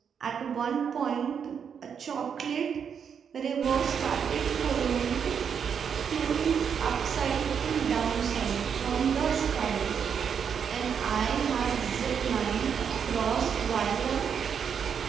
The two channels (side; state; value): left; quieter; 7.3 dB